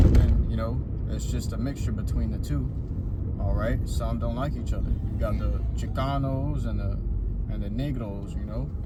And you know, it's just a mixture between the two. All right, some don't like each other. You got the Chicanos and the Negros, you know,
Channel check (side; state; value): both; identical; correlation 1.00